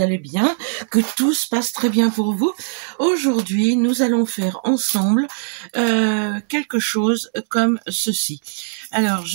bien, que tout se passe très bien pour vous. Aujourd'hui, nous allons faire ensemble quelque chose comme ceci. Alors,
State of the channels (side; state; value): left; silent; digital silence